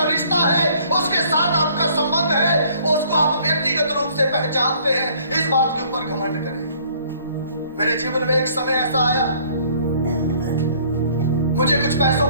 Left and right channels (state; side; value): inverted; both; correlation -0.58